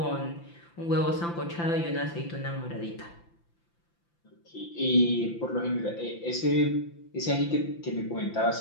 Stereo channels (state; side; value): late; right; 5.9 ms